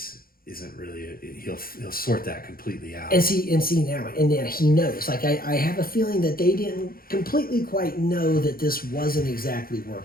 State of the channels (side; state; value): right; late; 0.43 ms